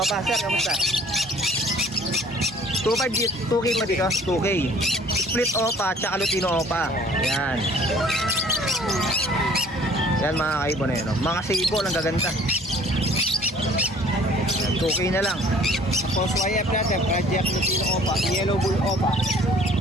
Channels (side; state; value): both; normal; correlation 0.53